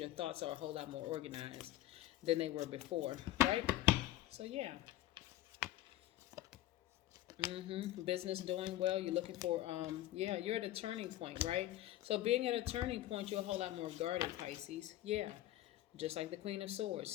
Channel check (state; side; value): quieter; right; 14.4 dB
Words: thoughts are a whole lot more organized than they were before, right? So yeah. Business doing well. You're looking for, you're at a turning point, right? So being at a turning point, you're a whole lot more guarded, Pisces. Yeah. Just like the Queen of Swords,